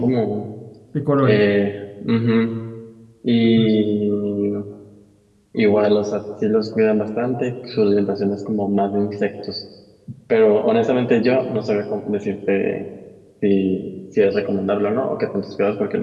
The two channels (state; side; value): identical; both; correlation 1.00